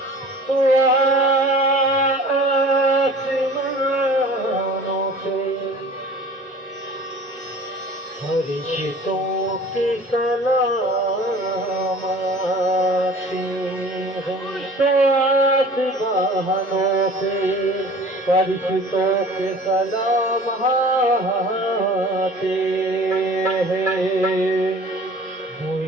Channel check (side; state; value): both; normal; correlation 0.45